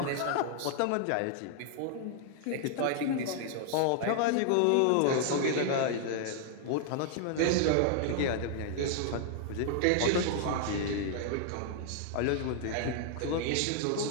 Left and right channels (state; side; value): different; both; correlation 0.00